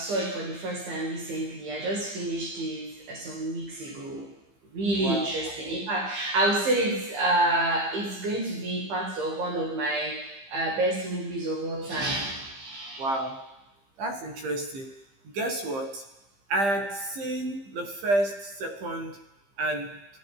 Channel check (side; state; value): left; late; 15 ms